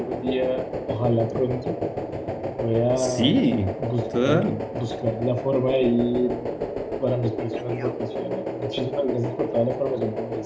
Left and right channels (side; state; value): both; identical; correlation 1.00